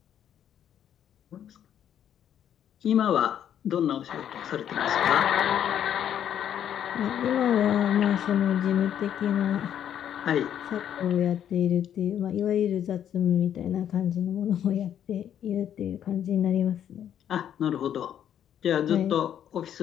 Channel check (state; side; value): quieter; right; 9.8 dB